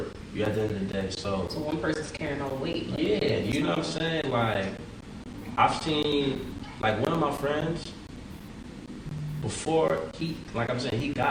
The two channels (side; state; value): both; identical; correlation 1.00